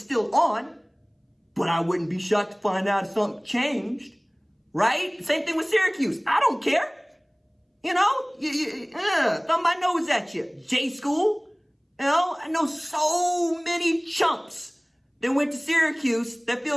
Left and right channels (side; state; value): both; identical; correlation 1.00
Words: on, but I wouldn't be shocked to find out if something changed, right? Same thing with Syracuse. I don't care. You know, thumb my nose at you. J school. You know, I know so many chumps that went to Syracuse that